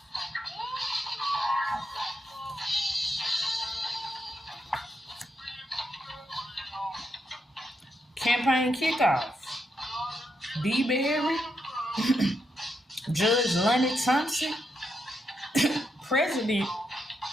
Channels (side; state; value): both; normal; correlation 0.81